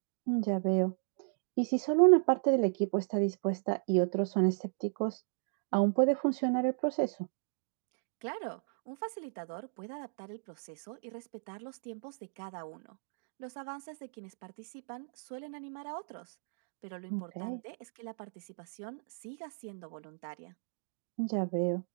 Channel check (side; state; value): left; silent; digital silence